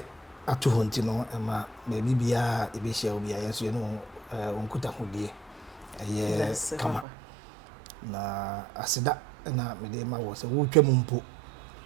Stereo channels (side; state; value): left; drops out; at 7.1 s